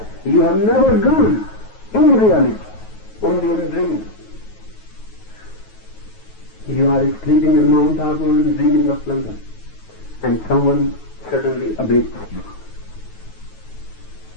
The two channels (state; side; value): late; right; 9.3 ms